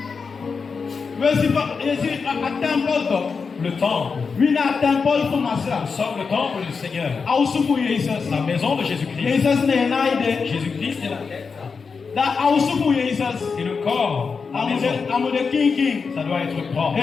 Le temple. Nous sommes le temple du Seigneur. La maison de Jésus-Christ. Jésus-Christ est la tête. Et le corps, la maison, ça doit être propre.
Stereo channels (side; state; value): right; quieter; 5.2 dB